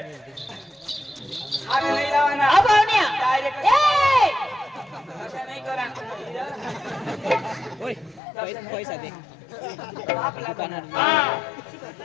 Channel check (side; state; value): right; drops out; at 8.2 s